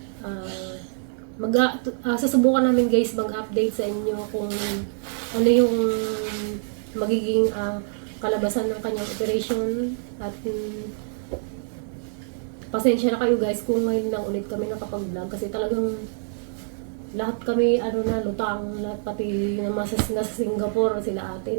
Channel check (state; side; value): silent; left; 56 dB below the other